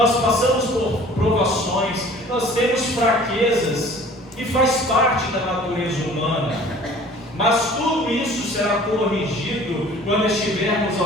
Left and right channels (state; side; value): normal; both; correlation 0.49